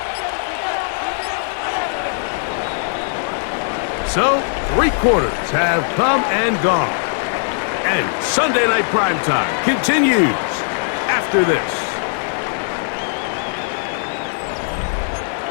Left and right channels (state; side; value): silent; right; digital silence